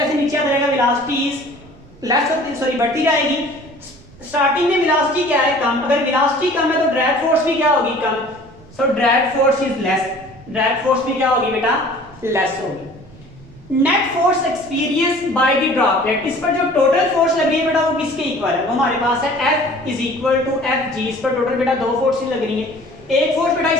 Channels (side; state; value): right; noise; rumble, 23 dB below the sound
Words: नीचे आता जाएगा वेलोसिटी इज लेस होती, सॉरी बढ़ती जाएगी। स्टार्टिंग में वेलोसिटी क्या है, कम, अगर वेलोसिटी कम है तो ड्रैग फोर्स भी क्या होगी, कम, so drag force is less, drag force भी क्या होगी बेटा, लेस होगी। Net force experience by the droplet, इस पर जो टोटल फोर्स लग रही है बेटा वो किसके इक्वल है, वो हमारे पास है F is equal to Fg, इस पर टोटल बेटा दो फोर्सेस लग रही है, एक फोर्स बेटा